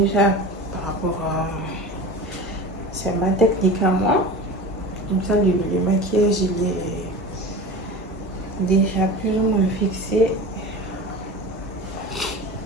par rapport à... C'est ma technique à moi. Comme ça, le maquillage, il est déjà plus ou moins fixé.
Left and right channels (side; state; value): both; normal; correlation 0.33